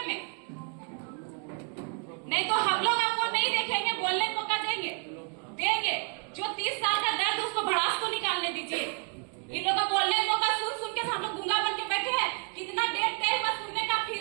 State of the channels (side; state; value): left; quieter; 39.7 dB